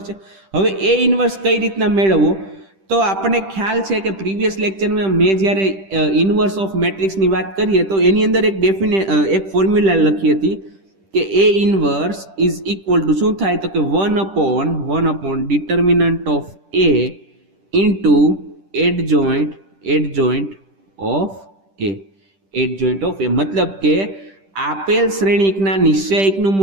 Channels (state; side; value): late; left; 10 ms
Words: છે. હવે A ઇન્વર્સ કઈ રીતના મેળવવો? તો આપણને ખ્યાલ છે કે પ્રીવિયસ લેક્ચરમાં મેં જ્યારે ઇન્વર્સ ઓફ મેટ્રિક્સની વાત કરીએ તો એની અંદર એક ફોર્મ્યુલા લખી હતી કે A inverse is equal to શું થાય? તો કે 1 upon determinant of A into adjoint of A. મતલબ કે આપેલ શ્રેણિકના નિશ્ચયકનું